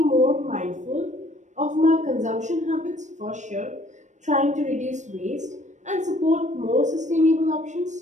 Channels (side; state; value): left; late; 0.35 ms